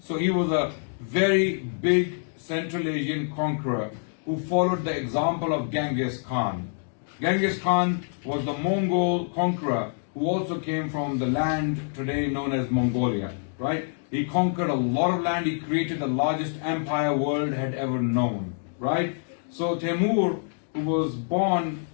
he was a very big Central Asian conqueror who followed the example of Genghis Khan. Genghis Khan was the Mongol conqueror who also came from the land today known as Mongolia, right? He conquered a lot of land. He created the largest empire world had ever known, right? So Timur, who was born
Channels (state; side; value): silent; right; digital silence